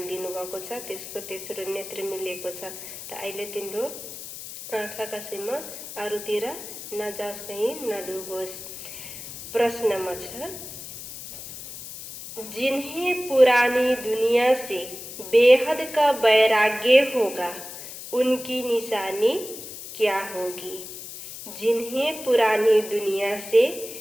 दिनुभएको छ त्यसको तेस्रो नेत्र मिलेको छ। त अहिले तिम्रो आँखा कसैमा अरूतिर नजाओस्, कहीँ नडुबोस्। प्रश्नमा छ, जिन्हें पुरानी दुनिया से बेहद का वैराग्य होगा उनकी निशानी क्या होगी? जिन्हें पुरानी दुनिया से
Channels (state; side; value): noise; left; hiss, 11 dB below the sound